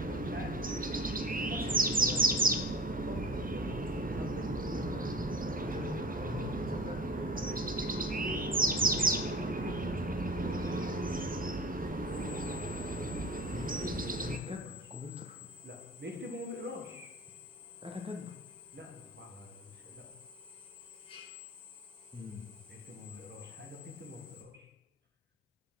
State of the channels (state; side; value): normal; both; correlation 0.37